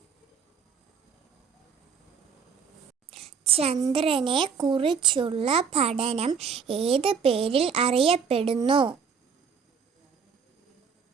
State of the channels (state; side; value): quieter; left; 6.3 dB